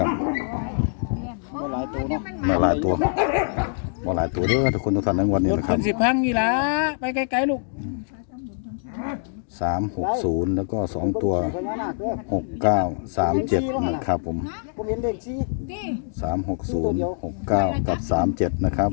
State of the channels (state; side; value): silent; right; digital silence